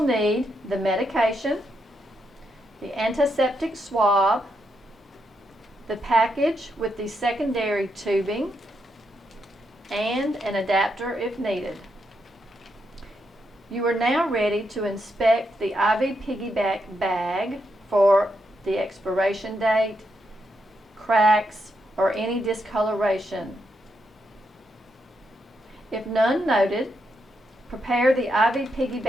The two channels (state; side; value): normal; both; correlation 0.81